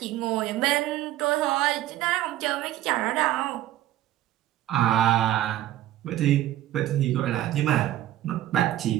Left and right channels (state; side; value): quieter; left; 13.9 dB